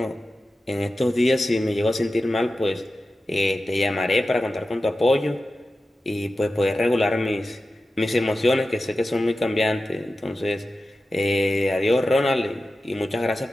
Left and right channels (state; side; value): normal; both; correlation 0.93